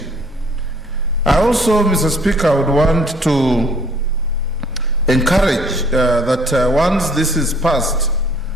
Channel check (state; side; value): normal; both; correlation 0.58